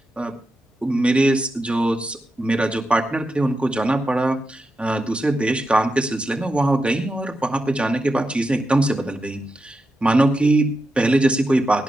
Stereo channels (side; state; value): both; normal; correlation 0.88